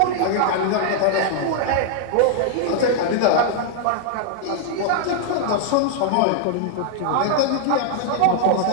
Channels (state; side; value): different; both; correlation -0.01